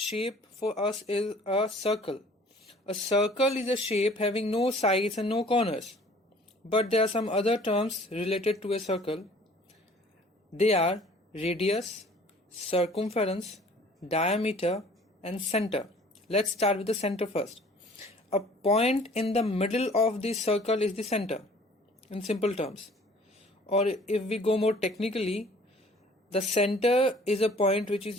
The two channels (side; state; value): both; normal; correlation 0.52